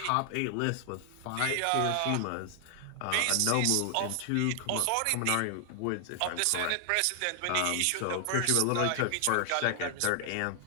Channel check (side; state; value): both; different; correlation 0.00